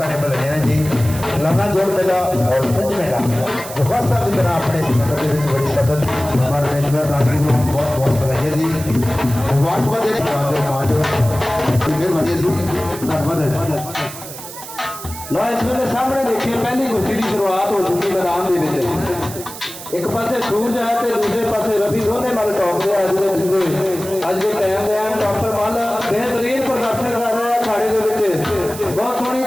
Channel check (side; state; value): right; noise; hiss, 12 dB below the sound